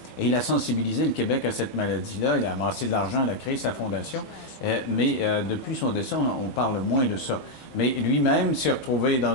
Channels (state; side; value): late; right; 21 ms